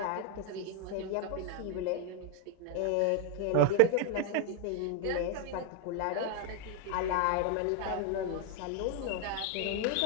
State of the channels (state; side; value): different; both; correlation 0.02